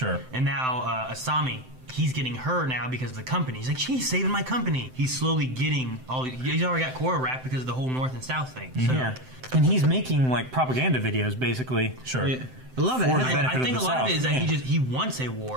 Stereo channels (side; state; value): left; late; 7.8 ms